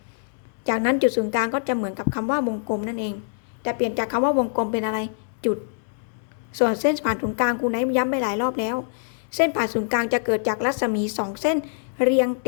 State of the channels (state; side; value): silent; right; digital silence